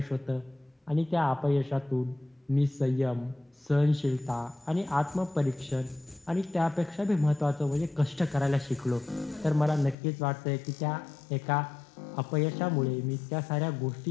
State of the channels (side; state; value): right; drops out; at 10.0 s